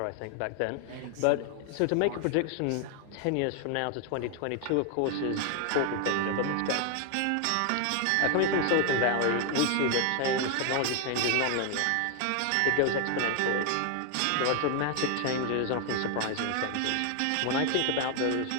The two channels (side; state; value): both; different; correlation 0.00